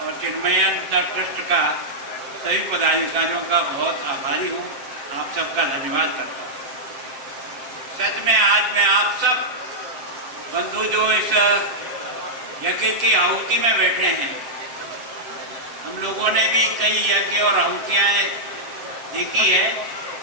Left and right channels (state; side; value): late; left; 7.7 ms